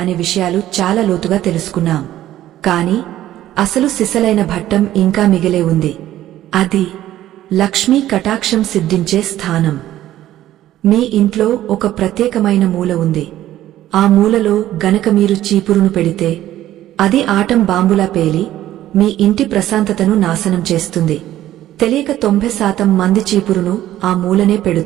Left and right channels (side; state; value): left; quieter; 13.5 dB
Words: విషయాలు చాలా లోతుగా తెలుసుకున్నాం. కాని అసలు సిసలైన భట్టం ఇంకా మిగిలే ఉంది. అది లక్ష్మీ కటాక్షం సిద్ధించే స్థానం. మీ ఇంట్లో ఒక ప్రత్యేకమైన మూల ఉంది. ఆ మూలలో గనక మీరు చీపురును పెడితే అది ఆటం బాంబులా పేలి మీ ఇంటి ప్రశాంతతను నాశనం చేస్తుంది. తెలియక 90% మంది చీపురును ఆ మూలనే